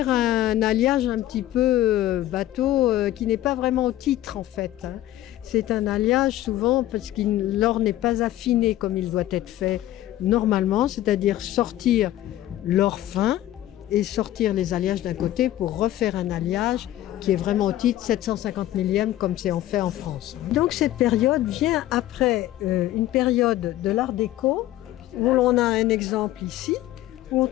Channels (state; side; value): quieter; right; 14.1 dB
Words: un alliage un petit peu bateau qui n'est pas vraiment au titre en fait. C'est un alliage souvent parce que l'or n'est pas affiné comme il doit être fait normalement, c'est-à-dire sortir l'or fin et sortir les alliages d'un côté pour refaire un alliage qui est vraiment au titre 750 millième comme c'est en fait en France. Donc cette période vient après une période de l'art déco où l'on a un exemple ici où on